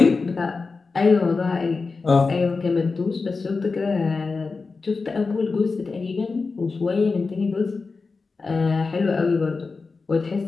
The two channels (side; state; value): right; quieter; 4.3 dB